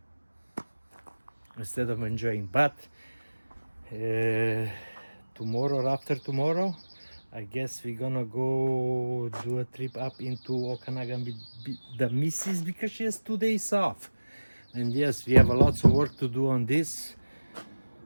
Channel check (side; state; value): both; inverted; correlation -1.00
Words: instead of enjoying. But tomorrow or after tomorrow, I guess we're gonna go do a trip up into Okanagan with the missus because she has 2 days off. And yes, we have a lots of work to do on this.